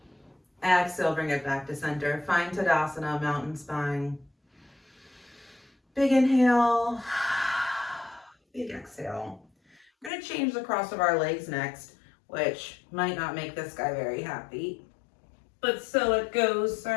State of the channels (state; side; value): drops out; right; at 10.1 s